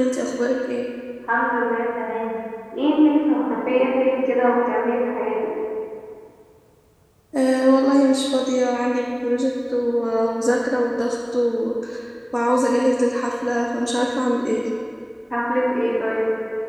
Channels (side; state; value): both; identical; correlation 1.00